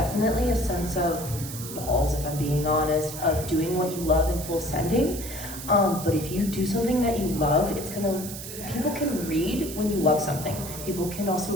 a sense of balls, if I'm being honest, of doing what you love in full sending. But if you do something that you love, people can read when you love something. People can also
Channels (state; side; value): noise; right; hiss, 10 dB below the sound